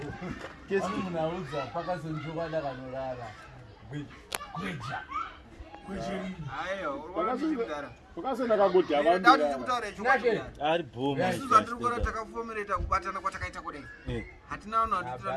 Kesi munauza paka sonjoka ndakanolala. Kweja. Ayo, urwanda. Ukasena kakuti abantu. Ndati kutaura chokati. Ari boma. Isuzu andikora takafomereta kubatana kwatakaita kudai. Hatina vanhu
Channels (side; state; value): both; identical; correlation 1.00